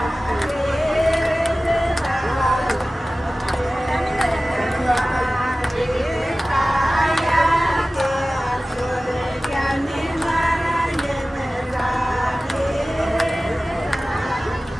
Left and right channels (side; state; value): both; normal; correlation 0.97